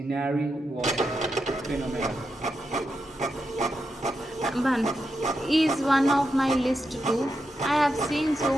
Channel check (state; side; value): normal; both; correlation 0.86